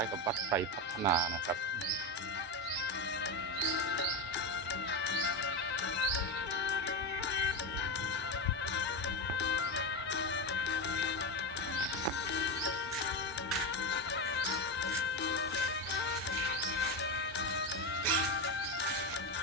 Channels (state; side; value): normal; both; correlation 0.15